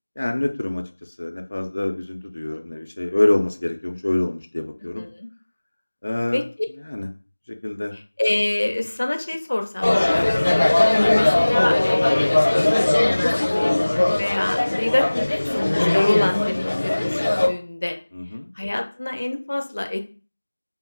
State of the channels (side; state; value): both; inverted; correlation -1.00